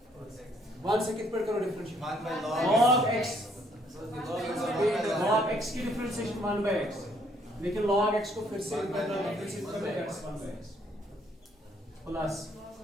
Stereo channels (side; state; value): both; normal; correlation 0.66